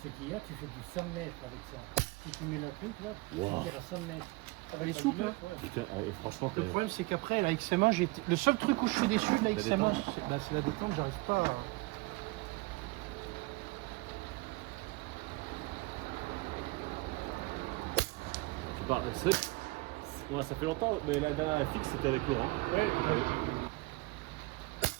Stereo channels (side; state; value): left; quieter; 23.1 dB